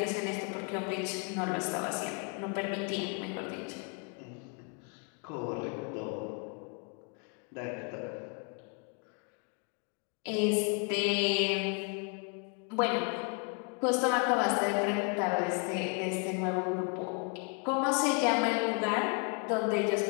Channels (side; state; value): right; quieter; 35.8 dB